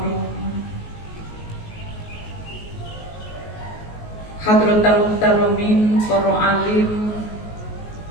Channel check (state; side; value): late; right; 19 ms